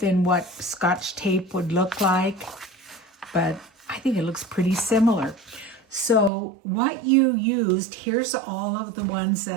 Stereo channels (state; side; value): drops out; left; at 6.3 s